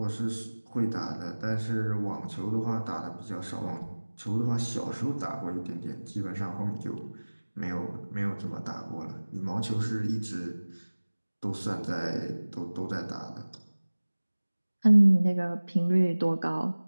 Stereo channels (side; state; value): both; inverted; correlation -1.00